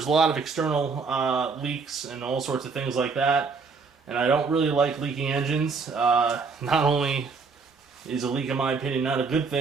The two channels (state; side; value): quieter; left; 4.8 dB